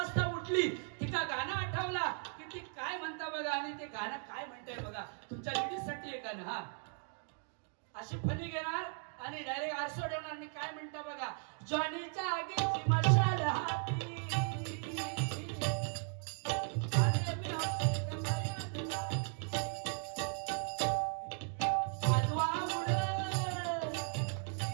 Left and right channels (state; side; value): silent; left; 53 dB below the other